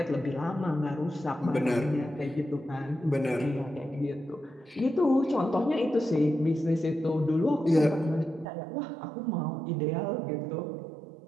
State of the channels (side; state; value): left; drops out; at 8.5 s